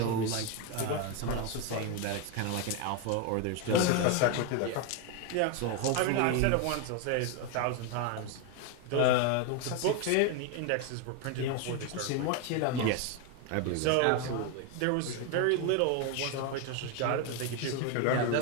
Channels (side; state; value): both; different; correlation 0.01